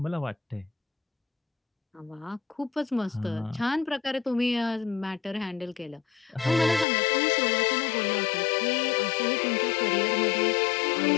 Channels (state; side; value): drops out; right; at 6.9 s